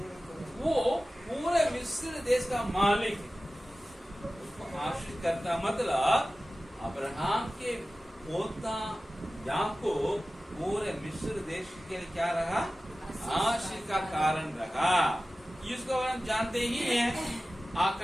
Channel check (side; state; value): both; normal; correlation 0.96